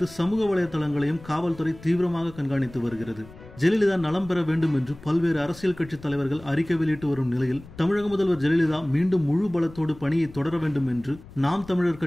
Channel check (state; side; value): noise; left; rumble, 19 dB below the sound